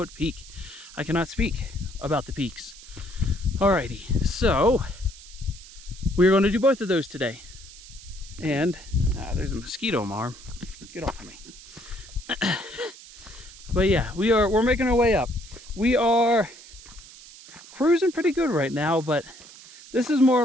peak. I cannot speak about the peaks. Alrighty, so we're going to do both of those today. And there's a mosquito on my arm. Get off of me. But yeah, we're making our way up. We are cruising pretty good right now, but this is more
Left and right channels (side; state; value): right; noise; hiss, 18 dB below the sound